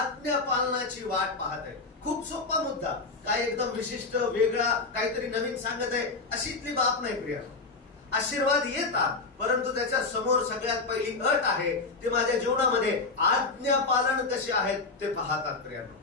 पालनाची वाट पाहते। खूप सोपा मुद्दा, काय एकदम विशिष्ट वेगळा काहीतरी नवीन सांगत आहे अशीतली बाब नाही प्रिया। आशीर्वाद येतात, परंतु त्याच्या समोर सगळ्यात पहिली अट आहे, ते माझ्या जीवनामध्ये आज्ञा पालन कसे आहेत ते पाहतात प्रियानो।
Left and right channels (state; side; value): quieter; right; 3.9 dB